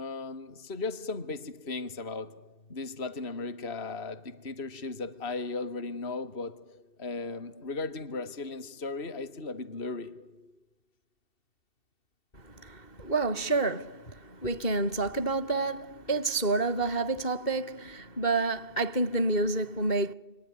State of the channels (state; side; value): late; right; 2.7 ms